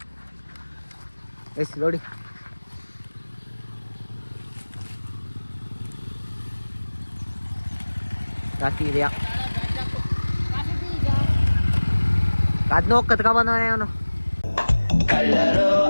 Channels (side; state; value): both; inverted; correlation -1.00